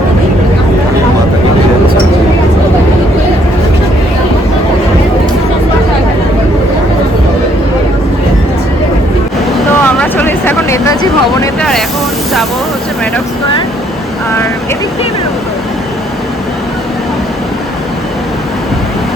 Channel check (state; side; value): normal; both; correlation 0.67